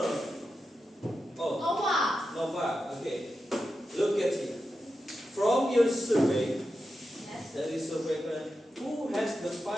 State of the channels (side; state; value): both; normal; correlation 0.89